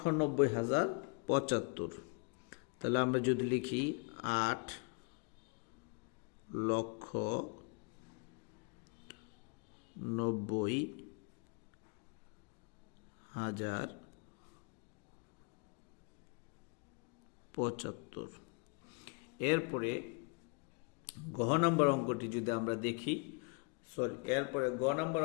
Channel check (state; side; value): quieter; right; 33.2 dB